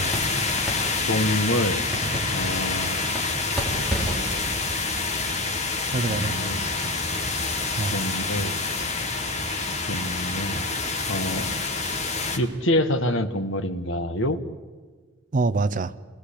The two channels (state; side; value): normal; both; correlation 0.22